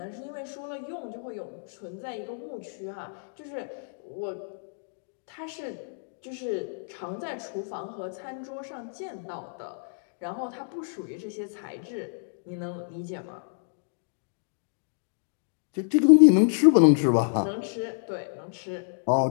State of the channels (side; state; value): right; silent; digital silence